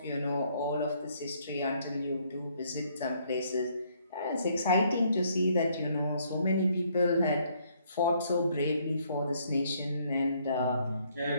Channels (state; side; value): inverted; both; correlation -0.67